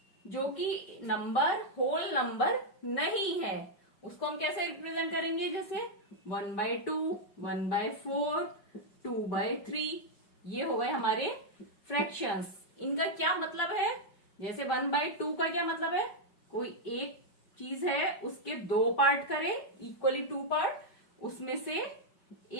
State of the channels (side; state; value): right; late; 5.1 ms